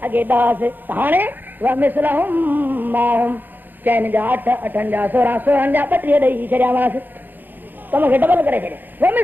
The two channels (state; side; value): late; left; 0.089 ms